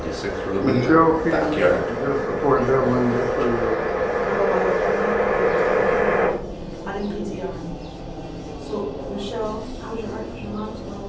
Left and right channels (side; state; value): both; identical; correlation 1.00